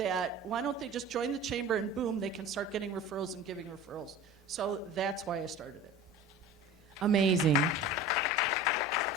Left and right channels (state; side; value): normal; both; correlation 0.37